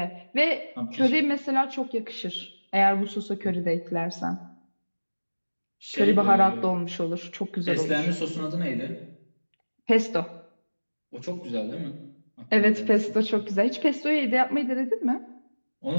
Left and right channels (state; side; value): inverted; both; correlation -1.00